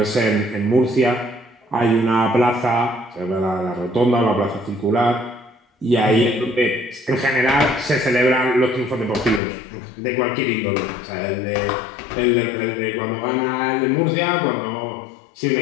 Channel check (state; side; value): drops out; right; at 9.4 s